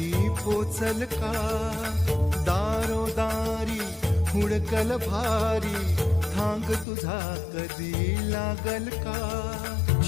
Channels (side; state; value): right; drops out; at 6.9 s